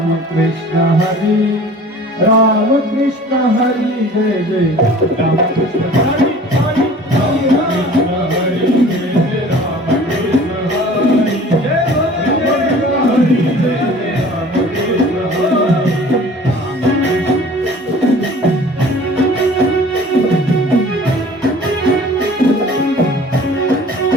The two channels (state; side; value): normal; both; correlation 0.46